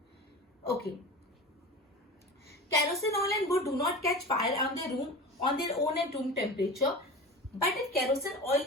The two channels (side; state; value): both; normal; correlation 0.32